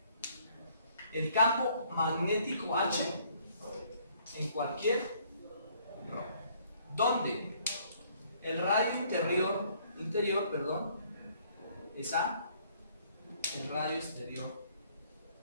el campo magnético H en cualquier RO, donde el radio interior es A, el radio exterior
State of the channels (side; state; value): both; inverted; correlation -0.63